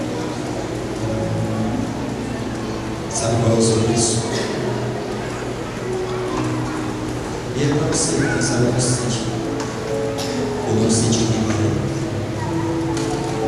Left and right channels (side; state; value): both; identical; correlation 1.00